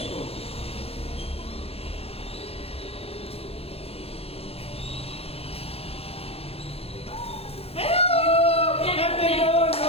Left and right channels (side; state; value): right; late; 0.29 ms